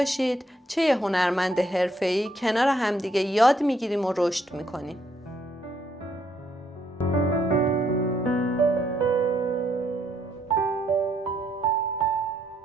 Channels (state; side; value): normal; both; correlation 0.71